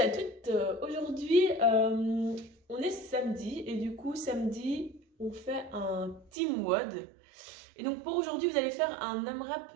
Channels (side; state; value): left; drops out; at 6.3 s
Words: toutes. Aujourd'hui, on est samedi et du coup, samedi, on fait un team WOD. Et donc, pour aujourd'hui, vous allez faire un